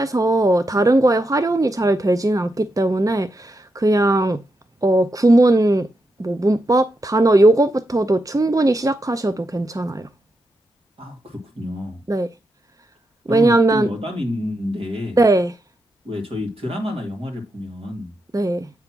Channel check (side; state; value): both; normal; correlation 0.85